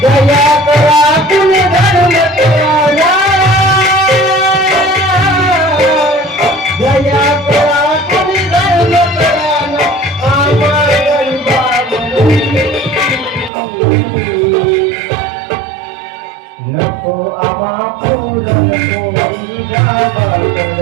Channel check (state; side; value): drops out; left; at 13.5 s